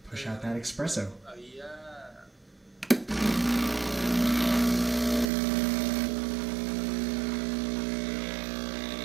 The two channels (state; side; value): drops out; left; at 5.2 s